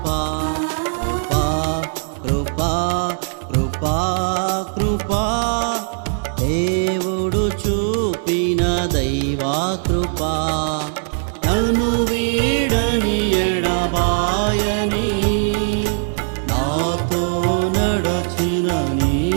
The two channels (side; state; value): left; silent; digital silence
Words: కృపా కృపా కృపా కృపా దేవుడు చూపిన దైవా కృపా నన్ను వీడని ఎడబాయని నాతో నడచిన నీ